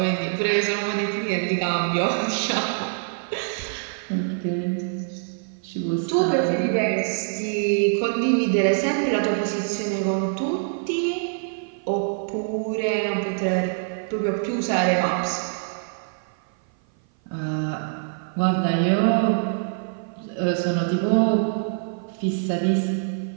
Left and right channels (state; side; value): silent; left; 56 dB below the other